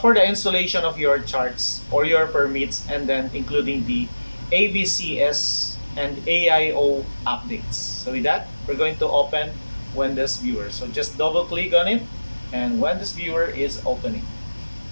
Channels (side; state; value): both; inverted; correlation -1.00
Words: for the installation of your charts or your permits, and then including the AVCS and AIO updates. So with that, we're going to open WENDISVIEWER. So just double click on it, and WENDISVIEWER is opening.